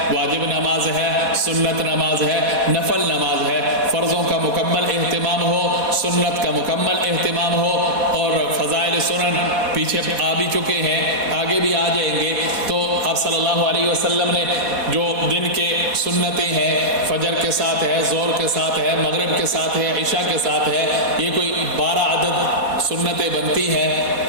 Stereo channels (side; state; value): left; late; 4.1 ms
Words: واجب نماز ہے، سنت نماز ہے، نفل نماز ہے، فرضوں کا مکمل اہتمام ہو، سنت کا مکمل اہتمام ہو، اور فضائل سنن پیچھے آ بھی چکے ہیں، آگے بھی آ جائیں گے۔ تو آپ صلی اللہ علیہ وسلم نے جو دن کے سنتیں ہیں، فجر کے ساتھ ہے، ظہر کے ساتھ ہے، مغرب کے ساتھ ہے، عشاء کے ساتھ ہے، یہ کوئی 12 عدد سنتیں بنتی